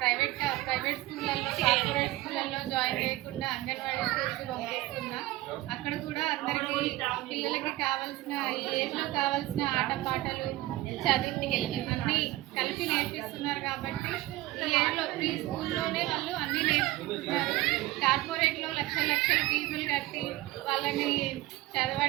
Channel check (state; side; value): quieter; left; 17.9 dB